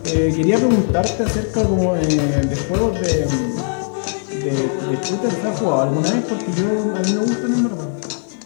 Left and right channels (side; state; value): right; silent; digital silence